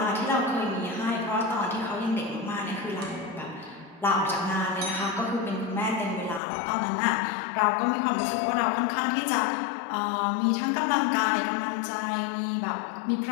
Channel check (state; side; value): drops out; right; at 6.4 s